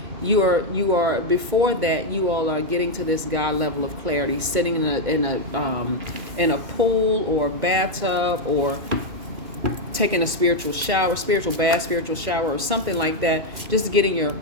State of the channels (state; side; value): late; left; 2.2 ms